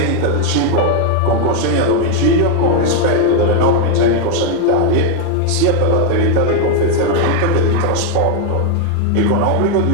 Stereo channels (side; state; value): both; different; correlation 0.01